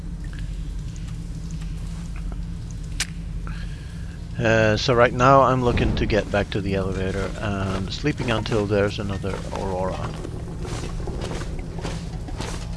So right now I'm looking to get back to the elevator and sleeping until there's another Aurora.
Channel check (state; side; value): identical; both; correlation 1.00